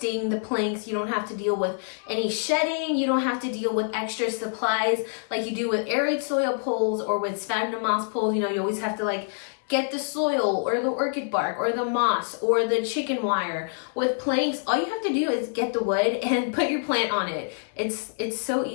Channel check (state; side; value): silent; right; 60 dB below the other